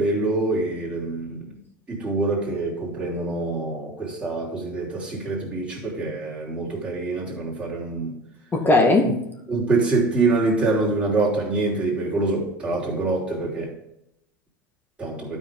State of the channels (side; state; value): both; normal; correlation 0.39